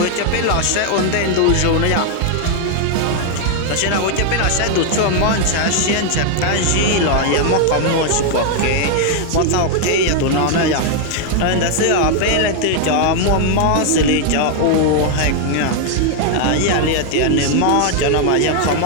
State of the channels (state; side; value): different; both; correlation 0.00